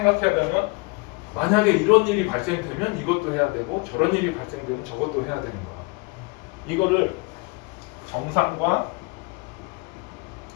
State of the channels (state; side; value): quieter; right; 27.9 dB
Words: 되면 만약에 이런 일이 발생되면 이것도 해야 되고 저런 일이 발생되면 저것도 해야 되는 거야. 이거를 정상과